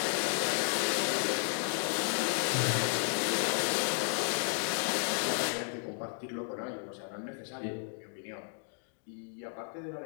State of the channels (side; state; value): right; silent; 56 dB below the other